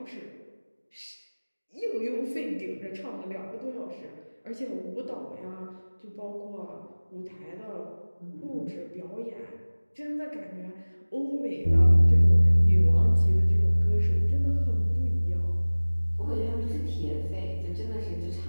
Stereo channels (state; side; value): inverted; both; correlation -1.00